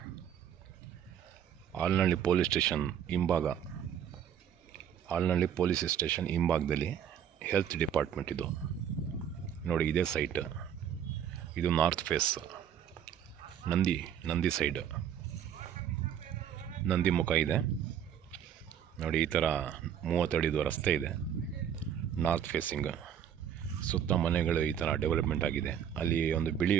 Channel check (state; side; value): quieter; left; 9.0 dB